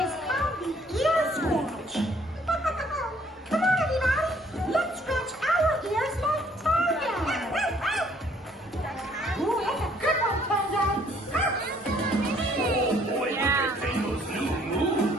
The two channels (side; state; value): both; normal; correlation 0.62